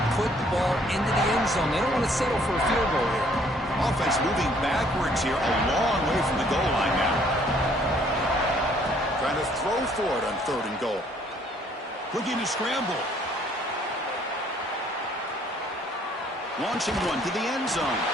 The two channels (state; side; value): normal; both; correlation 0.62